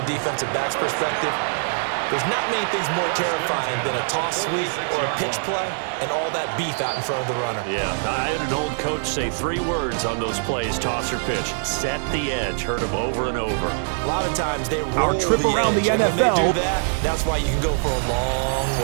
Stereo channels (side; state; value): left; silent; digital silence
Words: defensive back's perspective. There's not many things more terrifying than a toss sweep or a pitch play and all that beef out in front of the runner. Yeah, I had an old coach say 3 words on those plays, toss or pitch. Set the edge. Heard him over and over. A lot of times they roll Our trip the around edge, the and when NFL. they do that, that's why you can go for a long